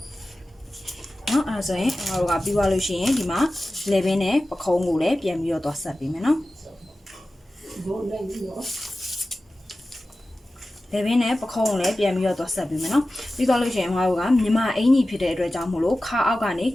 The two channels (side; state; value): both; normal; correlation 0.95